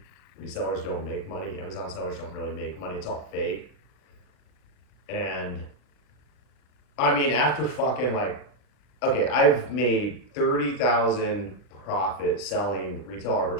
Resellers don't make money. Amazon sellers don't really make money. It's all fake. And I mean, after fucking like, okay, I've made 30,000 profit selling retail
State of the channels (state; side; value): late; right; 40 ms